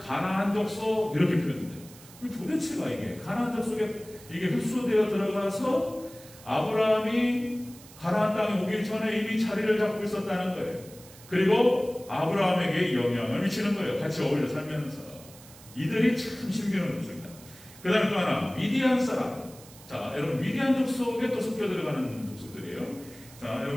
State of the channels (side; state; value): right; noise; hiss, 20 dB below the sound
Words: 족속 이렇게 표현돼요. 도대체가 이게 가나안 족속에 이게 흡수되어 들어가서 아브라함이 가나안 땅에 오기 전에 이미 자리를 잡고 있었다는 거예요. 그리고 아브라함에게 영향을 미치는 거예요. 같이 어울려 살면서. 이들이 참 신비로운 족속입니다. 그 다음에 또 하나, 미디안 사람. 자, 여러분, 미디안 족속에 또 섞여 들어가는 족속들이에요. 자,